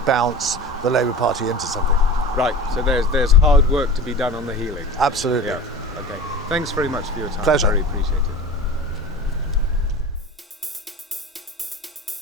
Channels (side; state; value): both; normal; correlation 0.35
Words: the Labour Party into something. Right, so there's hard work to be done on the healing. Absolutely. Yeah. Okay. Thanks very much for your time. Pleasure. Very appreciated.